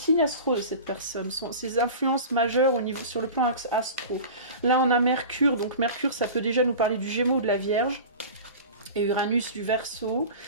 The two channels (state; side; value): inverted; both; correlation -0.35